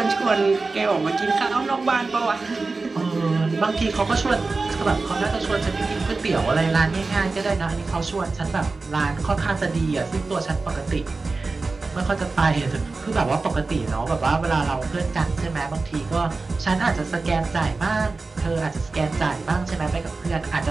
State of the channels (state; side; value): quieter; left; 3.8 dB